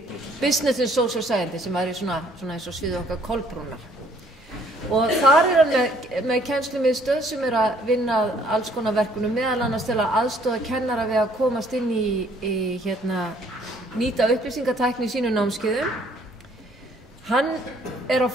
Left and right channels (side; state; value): both; normal; correlation 0.62